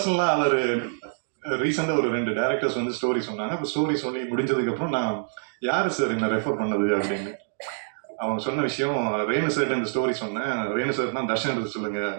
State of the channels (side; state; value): left; silent; digital silence